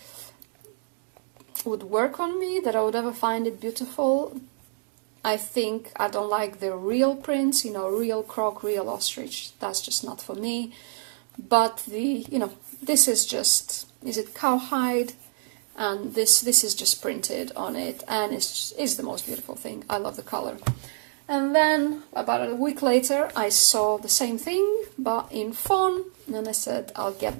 work on me, that I would ever find it beautiful. I think I don't like the real prints, real croc, real ostrich. That's just not for me. But this is just, is it cowhide? And this is just printed on it, and it's the most beautiful thing. I love the color. And then about a week later, I saw the same thing, but in fawn, and I said, I'll get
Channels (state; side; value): silent; left; digital silence